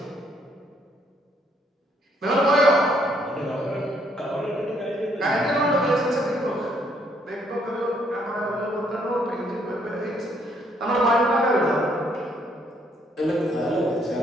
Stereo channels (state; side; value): normal; both; correlation 0.69